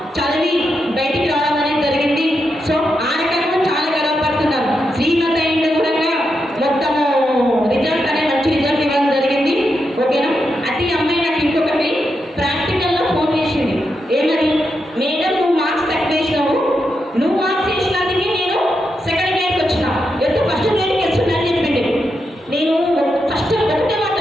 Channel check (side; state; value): both; normal; correlation 0.85